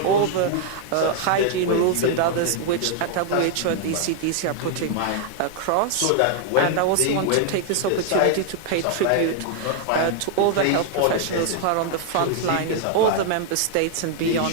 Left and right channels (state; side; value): different; both; correlation 0.00